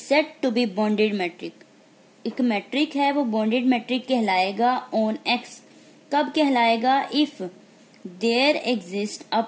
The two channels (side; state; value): both; identical; correlation 1.00